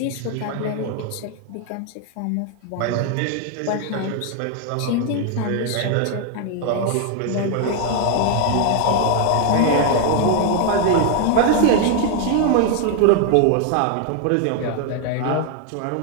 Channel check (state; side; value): different; both; correlation 0.00